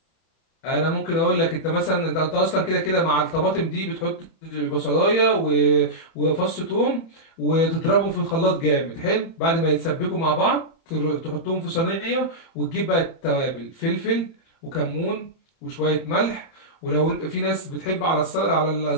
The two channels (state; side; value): late; right; 31 ms